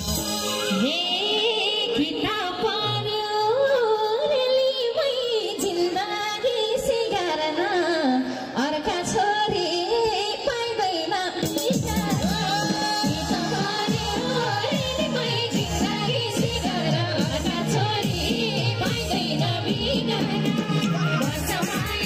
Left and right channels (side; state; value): both; identical; correlation 1.00